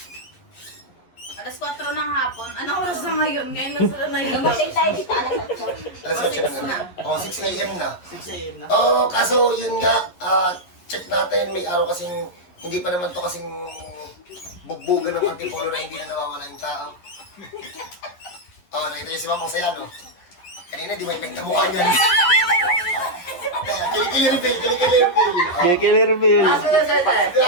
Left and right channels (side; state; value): right; late; 11 ms